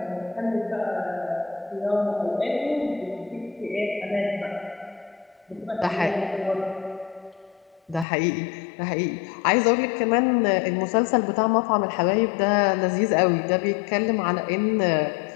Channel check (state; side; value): drops out; right; at 8.1 s